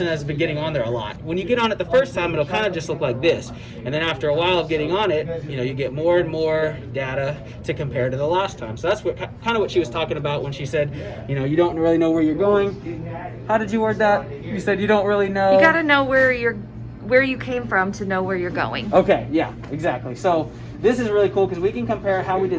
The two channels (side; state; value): both; identical; correlation 1.00